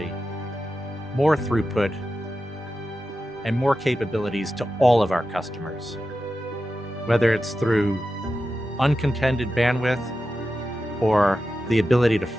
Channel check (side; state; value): both; normal; correlation 0.91